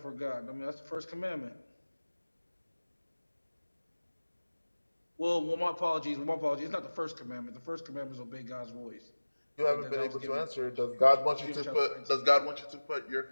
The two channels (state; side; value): inverted; both; correlation -1.00